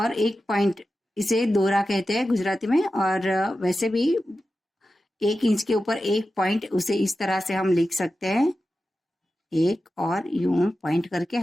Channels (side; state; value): both; normal; correlation 0.92